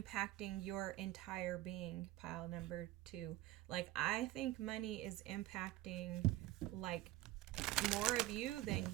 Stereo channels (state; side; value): quieter; left; 15.9 dB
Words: your entire being, pile number 2. Like, I think money is impacting like more of you than